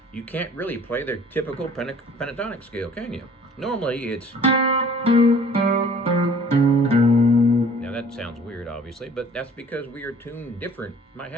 You can't really play the typical pentatonic scale, can you? Normally it's... Now that sounds weird, obviously, but that's because we are tuned different. My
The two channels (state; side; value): normal; both; correlation 0.52